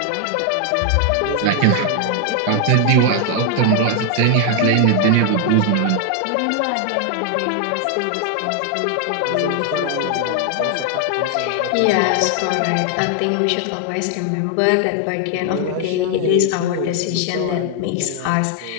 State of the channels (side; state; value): both; different; correlation 0.00